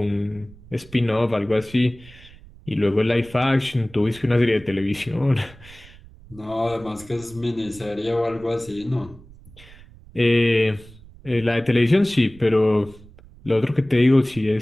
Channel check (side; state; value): right; noise; rumble, 22 dB below the sound